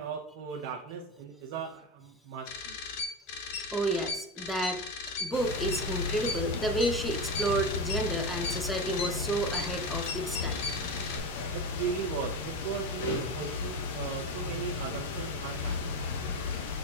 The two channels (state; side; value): normal; both; correlation 0.19